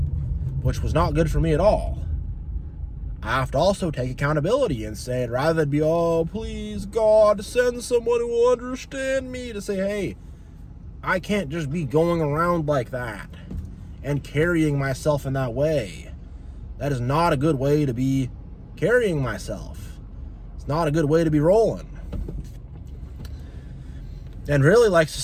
which was not good for me at all. I have to also take accountability and say, rather than be, oh, please, God, send someone who will understand me, to say, hey, I can't just be going around like that and carrying myself in that way. That is not a good way to be carrying myself. It's not a good way to be rolling. And really,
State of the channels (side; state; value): both; identical; correlation 1.00